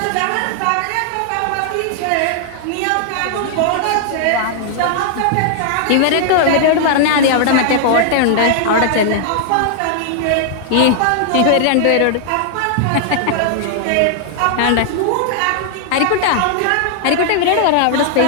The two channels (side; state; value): both; different; correlation 0.00